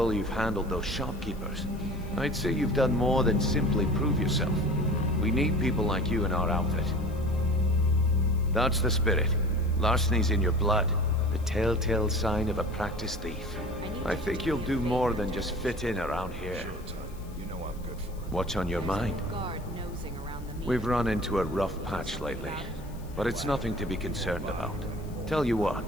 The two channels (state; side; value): noise; left; hiss, 25 dB below the sound